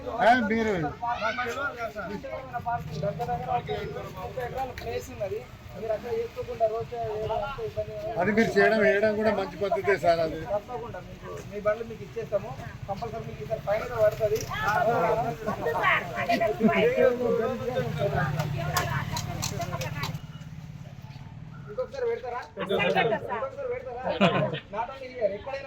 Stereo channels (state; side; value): identical; both; correlation 1.00